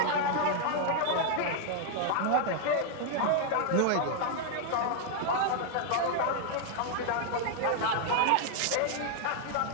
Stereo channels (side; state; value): both; different; correlation 0.00